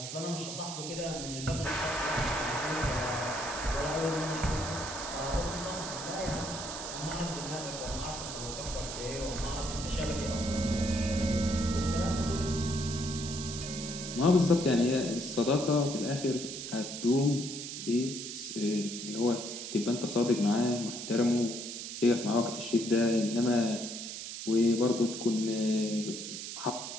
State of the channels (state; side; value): noise; right; hiss, 7 dB below the sound